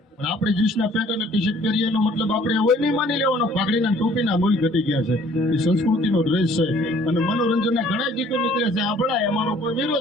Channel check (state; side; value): normal; both; correlation 0.57